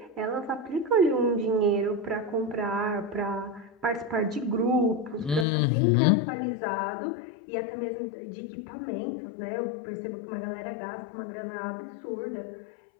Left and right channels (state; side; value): drops out; right; at 5.5 s